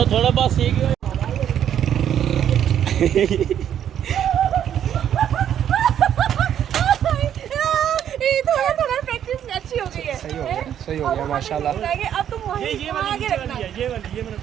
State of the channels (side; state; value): left; quieter; 9.8 dB